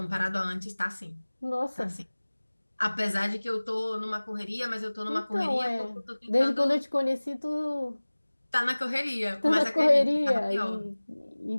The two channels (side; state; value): both; inverted; correlation -1.00